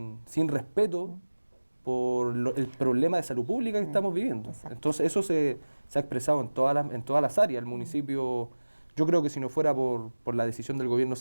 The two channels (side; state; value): both; inverted; correlation -1.00